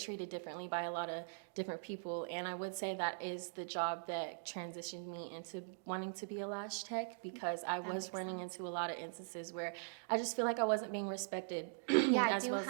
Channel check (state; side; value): silent; left; digital silence